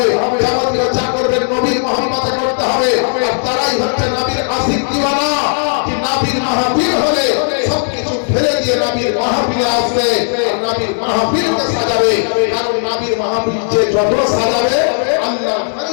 যাবতীয় যা করবেন নবীর মহব্বতে করতে হবে। আর তারাই হচ্ছে নবীর আশিক দিওয়ানা, যে নবীর মাহফিল হলে সবকিছু ফেলে দিয়ে নবীর মাহফিলে আসবে, আর নবীর মাহফিলকে সাজাবে। কারণ নবীর মাহফিল যে যত সাজাবে, আল্লাহর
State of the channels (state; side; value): silent; right; digital silence